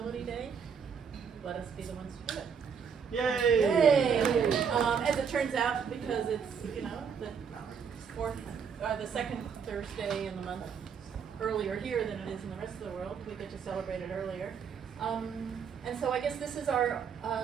Day, let us be the ones to do it. Yay! Yay! As it turns out, because it's the second Thursday in the month earlier here than it is in the rest of the world, we get to celebrate it earlier. And so I guess this is our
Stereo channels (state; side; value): quieter; left; 6.7 dB